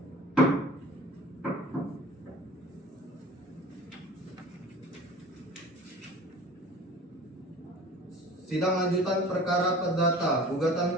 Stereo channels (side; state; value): both; normal; correlation 0.42